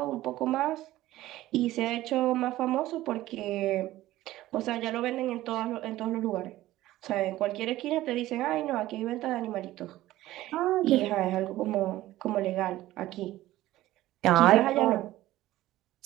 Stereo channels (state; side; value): quieter; left; 15.7 dB